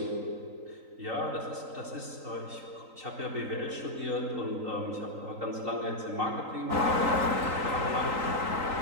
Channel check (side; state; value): left; late; 3.9 ms